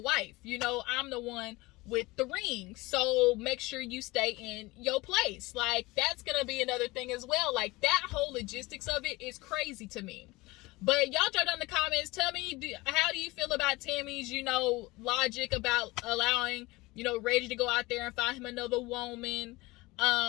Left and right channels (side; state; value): right; quieter; 21.7 dB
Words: You know, I'm the one with the ring. So make sure you stay in your place. Like, that's going to be another thing as well. Like, that whole logistics of it is crazy to me. But y'all drop down in the comments. Tell me, how do you feel about Tami's, you know, logic about allowing, you know, Reggie to go out there and find him another woman?